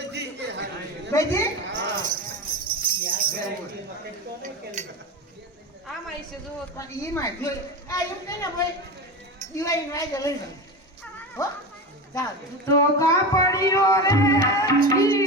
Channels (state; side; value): normal; both; correlation 0.24